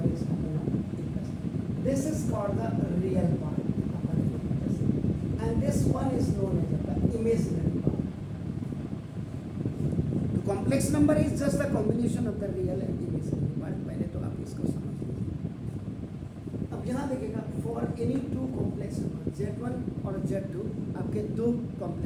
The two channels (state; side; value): identical; both; correlation 1.00